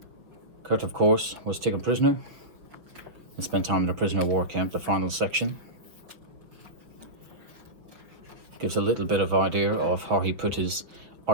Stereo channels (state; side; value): late; left; 5.8 ms